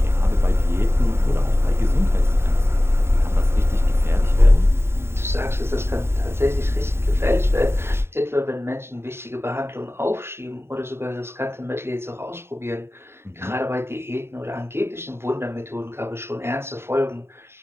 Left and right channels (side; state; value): left; late; 0.12 ms